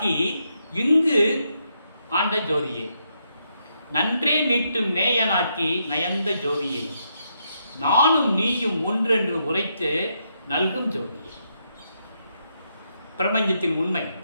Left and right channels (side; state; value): both; inverted; correlation -0.79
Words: இங்கு ஆண்ட ஜோதியே, நன்றே மீட்டும் நேயனாக்கி நயந்த ஜோதியை, நானும் நீயும் ஒன்றென்று உரைத்து நல்கும் ஜோதியை. பிரபஞ்சத்தின் உண்மை.